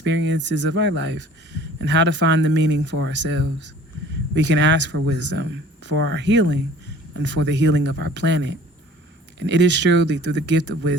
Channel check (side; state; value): both; normal; correlation 0.49